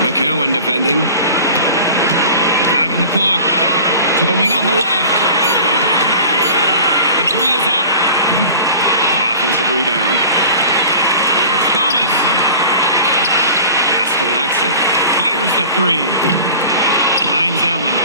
McCowan defending. 5 on the clock. To the wing on the left. The 3 is up. Offensive rebound. Here's Thomas. Pass to Lexa. Fires the 3. Hines Allen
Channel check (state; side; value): inverted; both; correlation -0.40